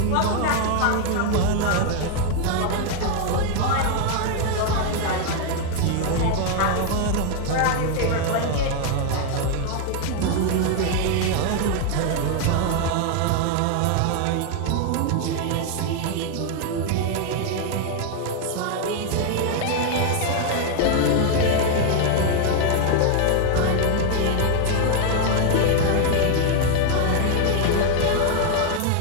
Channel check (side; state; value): both; different; correlation 0.01